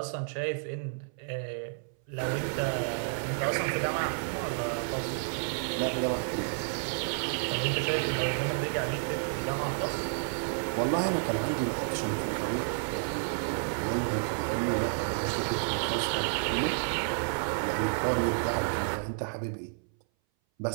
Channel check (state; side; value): silent; left; 57 dB below the other